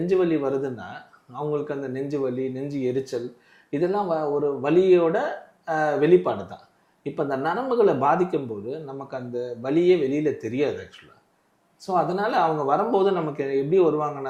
வலி வருதுன்னா அவங்களுக்கு அந்த நெஞ்சு வலி, நெஞ்சு எரிச்சல் இதெல்லாம் ஒரு வலியோட வெளிப்பாடு தான். இப்போ அந்த நரம்புகளை பாதிக்கும்போது நமக்கு அந்த வலியே வெளியில் தெரியாது ஆக்சுவலாக. ஸோ அதனால் அவங்க வரும்போது நமக்கு எப்படி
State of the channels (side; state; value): both; identical; correlation 1.00